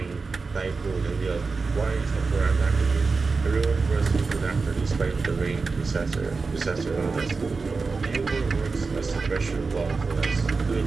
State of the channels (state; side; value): quieter; left; 4.4 dB